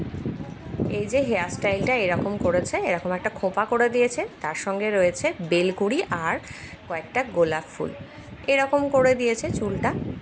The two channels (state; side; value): identical; both; correlation 1.00